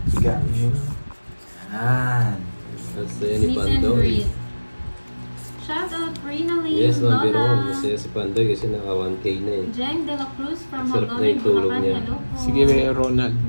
siga. Yan. That's ni Meet and Pandoy. greet. Shout out Rina Lee, Yes, ma'am, pero Lola. masaya si Pandoy kasi naka 1K na eh. Jen De La Cruz from Sarap na Hagawin, yung tulog Bulacan. niya. Hello po. Sige, Ronald.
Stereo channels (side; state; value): both; inverted; correlation -1.00